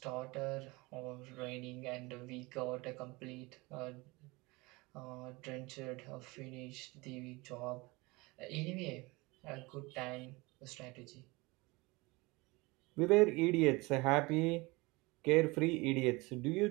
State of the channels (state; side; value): quieter; left; 24.1 dB